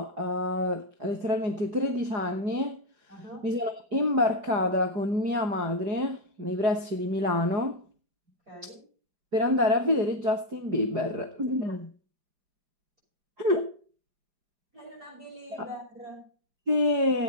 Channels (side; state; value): left; late; 4.9 ms